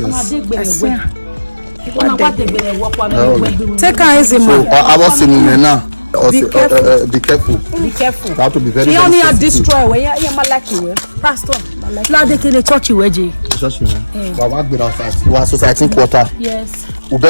I see him. Take her easy, So man. I was saying now. Be careful. Be careful. Be careful. You have to be very, He very only had sensitive. destroy where you like you Pastor. Now they can church you, Eji. Just we work with outside. We are society quarter. Yes. We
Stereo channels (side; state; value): both; inverted; correlation -1.00